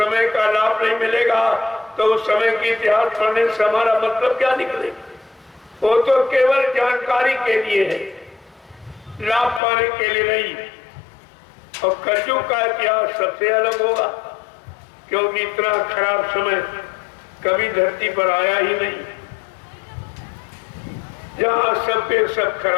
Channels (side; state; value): right; drops out; at 9.6 s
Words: का लाभ नहीं मिलेगा, तो उस समय की इतिहास पढ़ने से हमारा मतलब क्या निकलेगा? वो तो केवल जानकारी के लिए है, लाभ पाने के लिए नहीं। और कलयुग का इतिहास सबसे अलग होगा, क्योंकि इतना खराब समय कभी धरती पर आया ही नहीं, जहां सबके सब